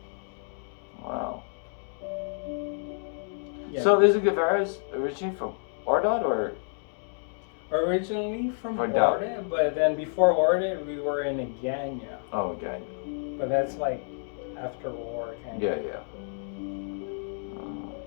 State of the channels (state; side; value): silent; right; digital silence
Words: Wow. Yeah. So is Guevara's originally from Ordot or? Originally from Or Orda, but then before Orda we were in Aganya. Oh, okay. But that's like after war kind Yeah, of. yeah.